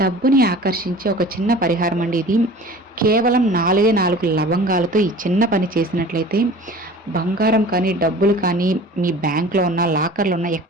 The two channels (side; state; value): both; normal; correlation 0.42